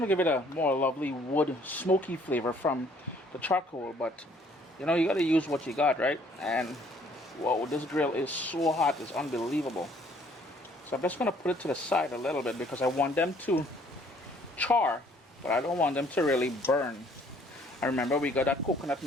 to give it a more lovely wood smoky flavor from the charcoal. But, you know, you got to use what you got, right? And, whoa, this grill is so hot. It's unbelievable. So I'm just going to put it to the side a little bit because I want them to char, but I don't want them to really burn. And remember, we got that coconut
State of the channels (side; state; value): both; normal; correlation 0.61